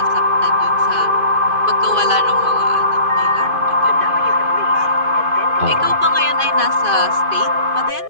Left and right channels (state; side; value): late; left; 2.5 ms